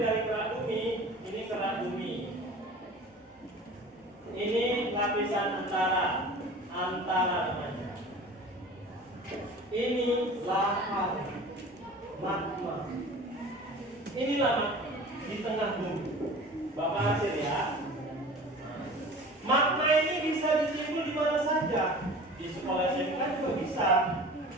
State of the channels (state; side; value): normal; both; correlation 0.40